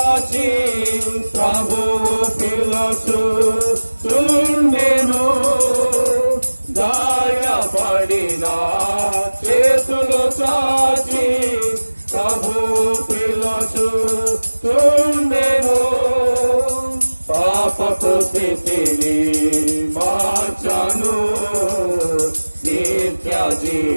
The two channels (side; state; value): both; inverted; correlation -1.00